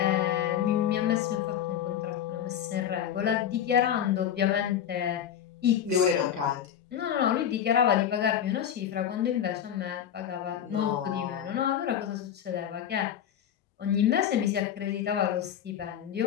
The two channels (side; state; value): right; quieter; 9.6 dB